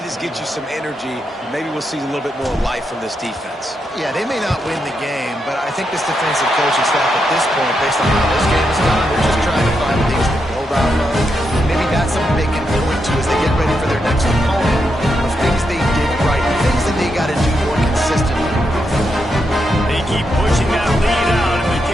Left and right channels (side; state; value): both; normal; correlation 0.83